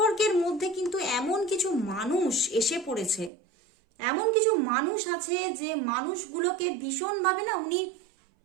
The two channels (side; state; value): left; drops out; at 3.3 s